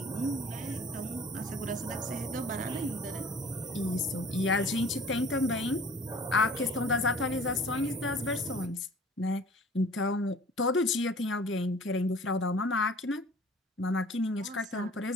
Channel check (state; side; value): normal; both; correlation 0.48